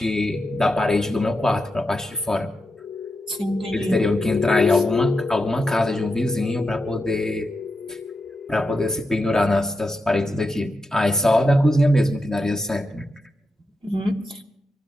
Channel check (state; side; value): normal; both; correlation 0.87